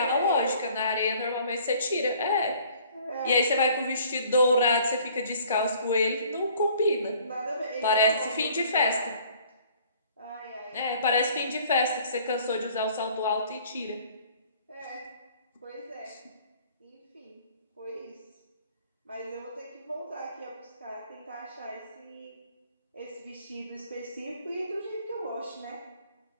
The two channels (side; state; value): both; inverted; correlation -0.55